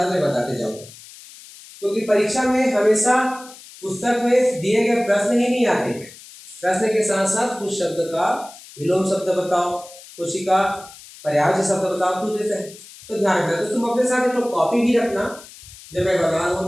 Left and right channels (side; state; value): left; noise; hiss, 19 dB below the sound